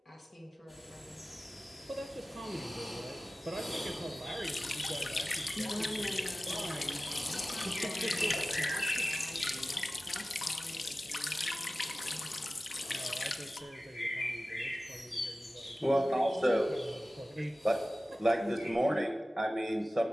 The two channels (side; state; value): both; normal; correlation 0.96